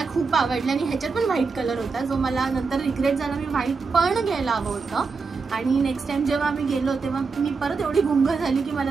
खूप आवडली आणि ह्याच्यात पण व्हाईट कलर होता जो मला नंतर रिग्रेट झाला. मी व्हाईट पण घ्यायला हवं होतं आणि नेक्स्ट टाइम जेव्हा आम्ही गेलो तेव्हा मी परत एवढी गुंग झाली की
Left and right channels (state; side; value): quieter; left; 4.7 dB